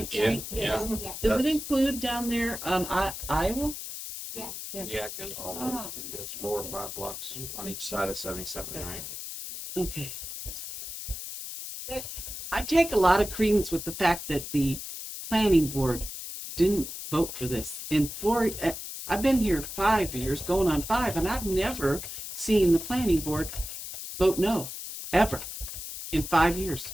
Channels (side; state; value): left; noise; hiss, 8 dB below the sound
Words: Street? Yeah. Yes. Does it include down there on Iowa? Yes. Yeah, it goes all Oh. over. It goes 4 or 5 blocks on each side of 77, right? Okay. I take a lot of credence with the fact that the planning board didn't vote for this. I've been here 5 years, going on 5, and I've never seen the planning board vote no, ever, in 5 years.